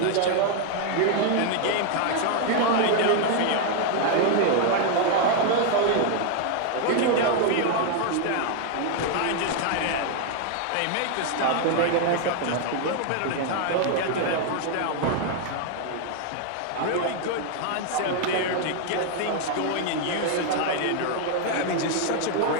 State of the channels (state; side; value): different; both; correlation 0.00